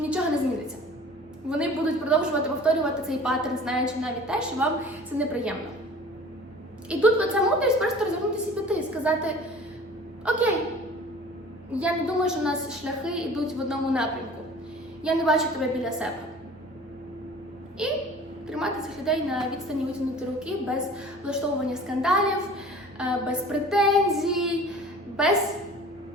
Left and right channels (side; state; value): both; normal; correlation 0.45